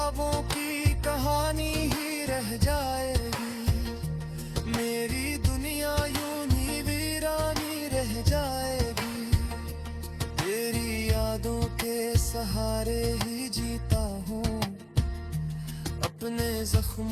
की कहानी ही रह जाएगी, मेरी दुनिया यूं ही वीरानी रह जाएगी। तेरी यादों के सहारे ही जीता हूँ, अपने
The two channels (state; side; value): identical; both; correlation 1.00